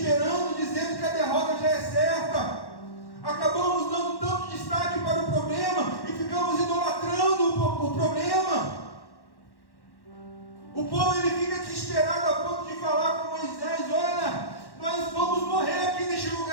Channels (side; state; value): right; late; 1.1 ms